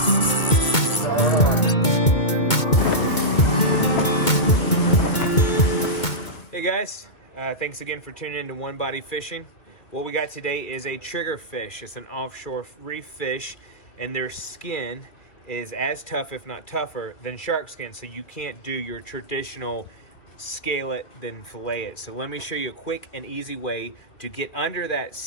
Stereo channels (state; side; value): late; right; 2.2 ms